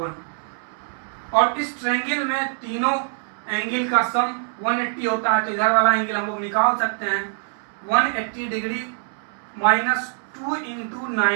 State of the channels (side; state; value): left; silent; digital silence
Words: और इस ट्रायंगल में तीनों एंगल का सम 180 होता है। तो इधर वाला एंगल हम लोग निकाल सकते हैं 180 degree minus 2 into